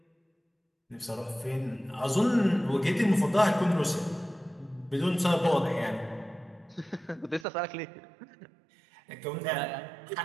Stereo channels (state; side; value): drops out; left; at 7.5 s